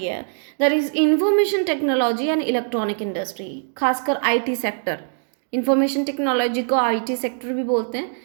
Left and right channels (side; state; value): left; silent; digital silence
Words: है। That is information technology and electronic industry, खासकर आईटी सेक्टर। इंफॉर्मेशन टेक्नोलॉजी को आईटी सेक्टर भी बोलते